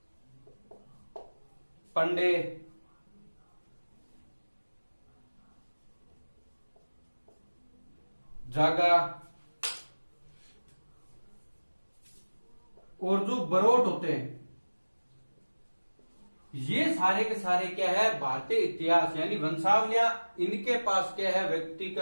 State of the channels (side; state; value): both; inverted; correlation -1.00